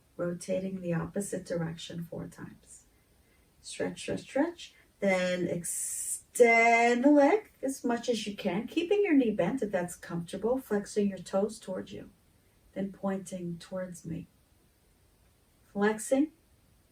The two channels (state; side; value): identical; both; correlation 1.00